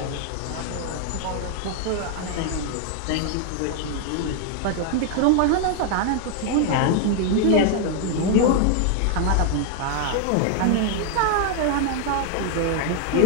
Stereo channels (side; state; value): both; different; correlation 0.00